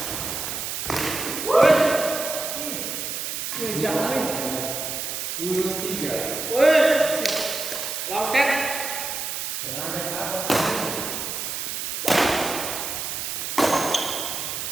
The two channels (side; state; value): right; noise; hiss, 4 dB below the sound